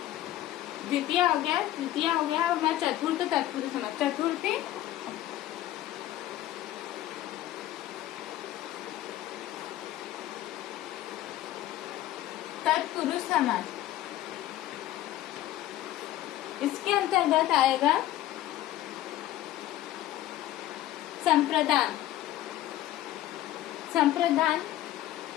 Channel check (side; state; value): right; quieter; 14.0 dB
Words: द्वितीय हो गया, तृतीय हो गया, और मैं चतुर्थ तत्पुरुष समास। चतुर्थी तत्पुरुष समास। इसके अंतर्गत आएगा संप्रदान, संप्रदान